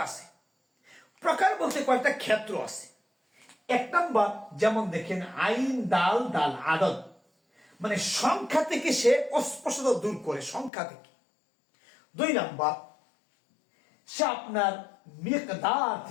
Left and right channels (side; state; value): right; drops out; at 10.7 s